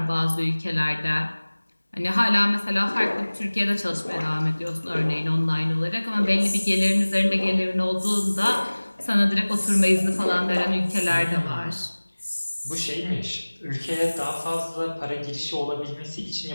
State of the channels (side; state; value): both; inverted; correlation -1.00